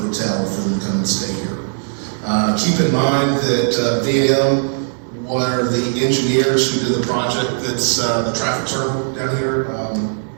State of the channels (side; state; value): left; silent; digital silence